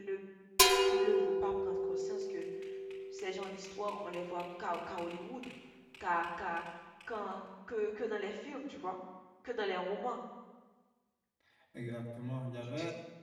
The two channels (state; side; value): identical; both; correlation 1.00